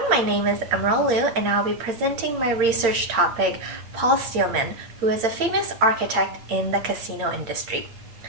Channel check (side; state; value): left; late; 8.8 ms